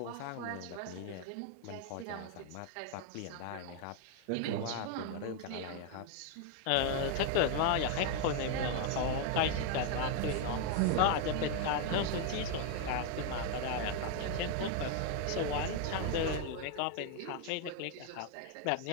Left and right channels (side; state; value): both; different; correlation 0.01